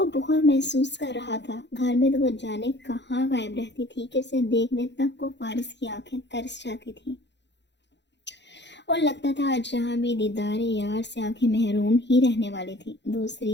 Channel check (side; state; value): right; late; 0.51 ms